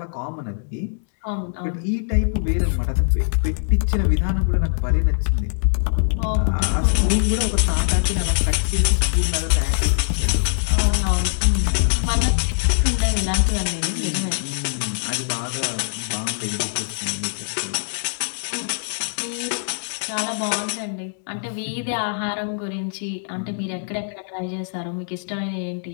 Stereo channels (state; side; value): silent; right; digital silence